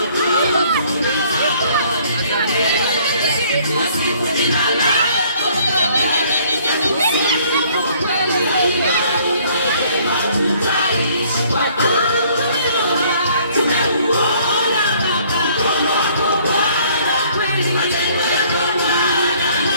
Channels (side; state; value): both; inverted; correlation -0.59